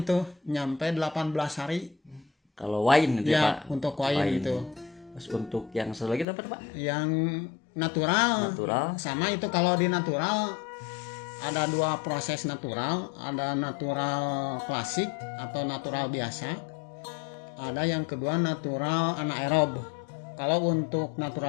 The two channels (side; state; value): right; drops out; at 6.2 s